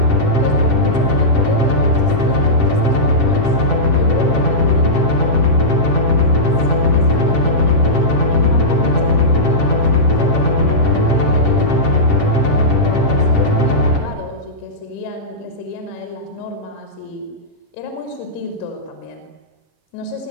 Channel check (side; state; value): right; late; 7.5 ms